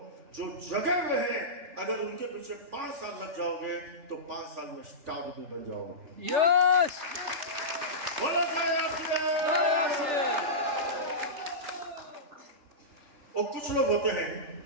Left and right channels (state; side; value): late; left; 3.3 ms